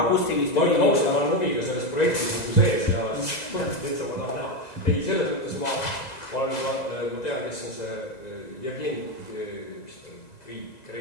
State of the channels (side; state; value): right; late; 2.0 ms